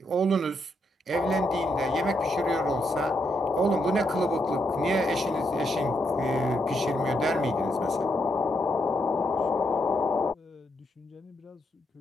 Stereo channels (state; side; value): normal; both; correlation 0.79